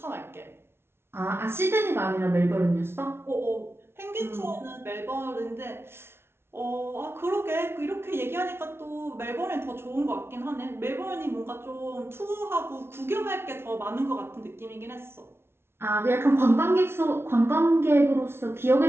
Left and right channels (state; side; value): late; left; 0.12 ms